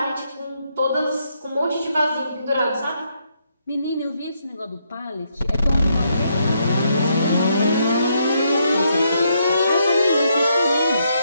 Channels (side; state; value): both; inverted; correlation -0.76